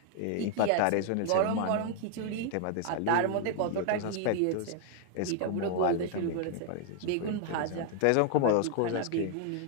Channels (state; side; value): different; both; correlation 0.00